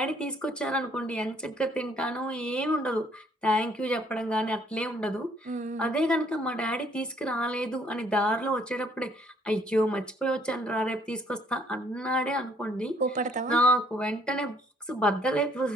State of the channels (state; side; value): normal; both; correlation 0.64